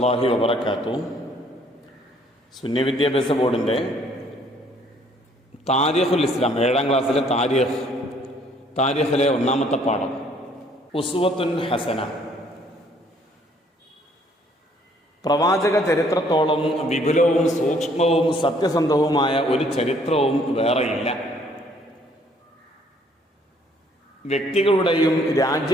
വബറകാതുഹു. സുന്നി വിദ്യാഭ്യാസ ബോർഡിൻ്റെ താരിഖുൽ ഇസ്ലാം 7ാം ക്ലാസ്സിലെ താരിഖിലെ 1ാമത്തെ പാഠം ഉസ്വത്തുൻ ഹസന. പ്രവാചക ചരിത്രത്തോളം വിപുലവും സൂക്ഷ്മവും സത്യസന്ധവുമായ ഒരു ചരിത്രവും വേറെയില്ല. വ്യക്തികളുടെയും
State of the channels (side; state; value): both; normal; correlation 0.62